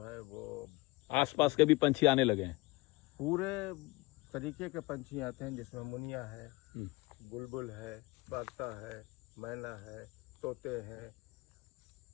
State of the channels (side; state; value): right; quieter; 23.0 dB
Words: है वो आसपास के भी पंछी आने लगे हैं। पूरे तरीके के पंछी आते हैं, जिसमें मुनिया है, बुलबुल है, बागता है, मैना है, तोते हैं,